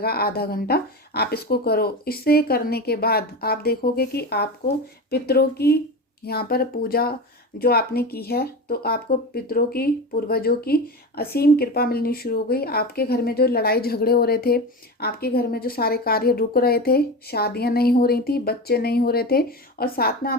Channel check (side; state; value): both; normal; correlation 0.24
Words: आधा घंटा। आप इसको करो, इससे करने के बाद आप देखोगे कि आपको पितरों की यहाँ पर पूजा जो आपने की है तो आपको पितरों की, पूर्वजों की असीम कृपा मिलनी शुरू हो गई। आपके घर में जो लड़ाई झगड़े हो रहे थे, आपके घर में जो सारे कार्य रुक रहे थे, शादियां नहीं हो रही थी, बच्चे नहीं हो रहे थे, और साथ में